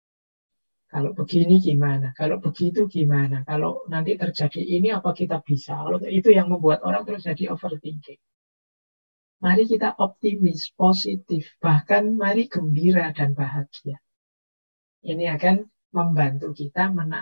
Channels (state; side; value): inverted; both; correlation -1.00